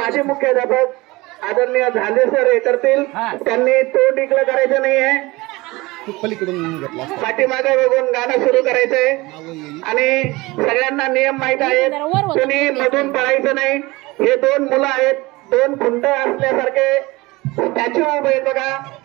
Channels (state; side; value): quieter; left; 21.8 dB